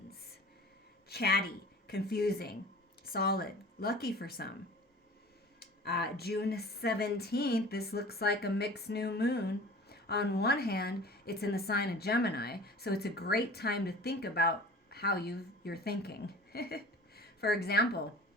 Chatty, confusing, solid, lucky for some. June 17th, this looks like a mixed new moon. On one hand, it's in the sign of Gemini, so it's a great time to think about how you're thinking. For example,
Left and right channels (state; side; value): normal; both; correlation 0.42